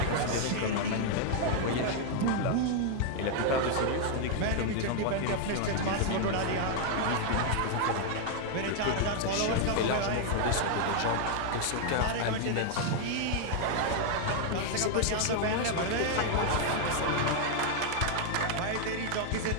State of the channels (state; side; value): different; both; correlation 0.00